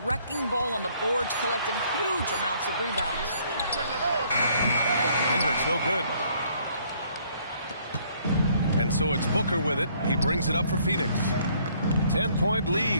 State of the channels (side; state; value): both; inverted; correlation -0.63